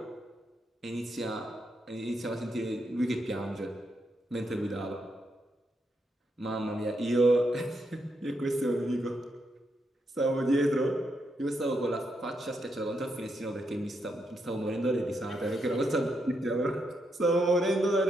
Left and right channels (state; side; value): normal; both; correlation 0.81